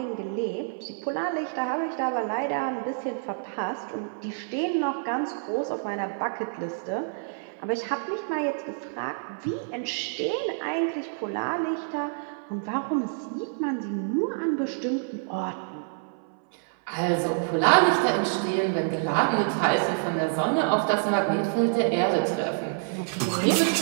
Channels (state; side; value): silent; left; 60 dB below the other